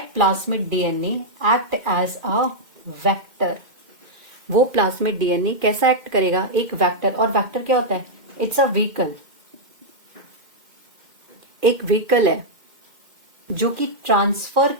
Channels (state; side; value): late; left; 2.1 ms